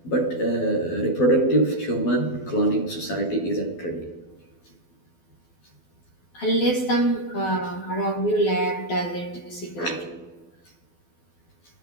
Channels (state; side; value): late; right; 12 ms